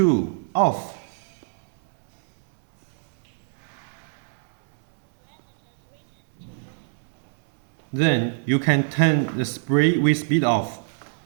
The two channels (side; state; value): left; silent; digital silence